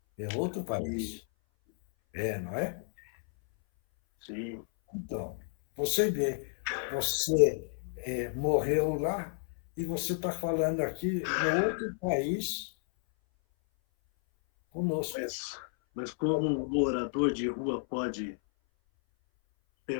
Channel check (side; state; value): right; silent; 57 dB below the other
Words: É outro país. Não é? Sim. Então, você vê, você morreu lá e você está falando aqui no outro país conosco. Mas como um morador de rua pode